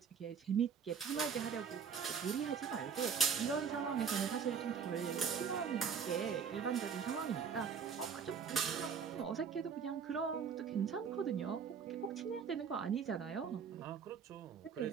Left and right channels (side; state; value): left; quieter; 6.7 dB